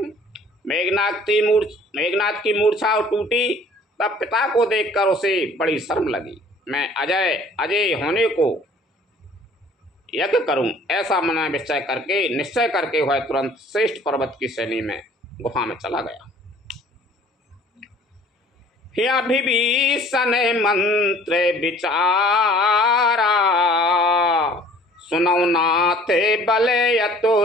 मेघनाथ की मूर्छा टूटी, तब पिता को देखकर उसे बड़ी शर्म लगी। मैं अजय होने को यज्ञ करूं, ऐसा मन में निश्चय करके वह तुरंत श्रेष्ठ पर्वत की श्रेणी में गुफा में चला गया। विभीषण मंत्र विचारा, सुनौ नाथ बले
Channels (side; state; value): both; normal; correlation 0.53